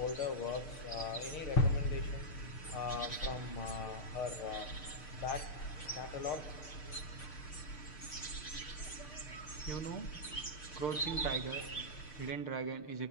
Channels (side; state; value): right; late; 6.6 ms